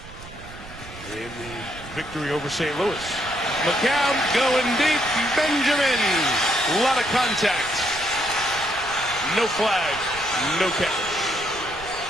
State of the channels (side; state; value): right; noise; rumble, 16 dB below the sound